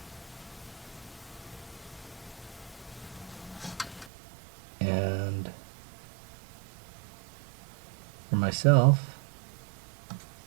And for myself,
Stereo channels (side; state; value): left; drops out; at 4.1 s